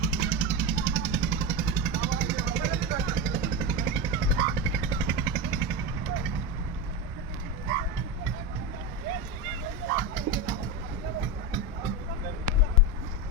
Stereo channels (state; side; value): normal; both; correlation 0.17